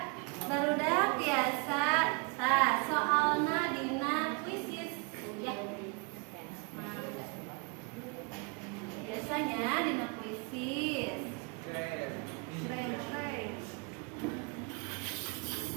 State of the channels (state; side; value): quieter; left; 31.2 dB